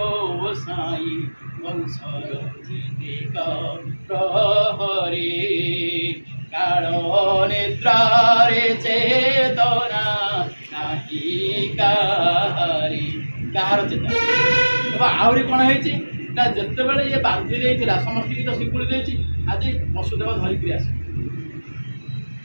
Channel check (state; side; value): inverted; both; correlation -1.00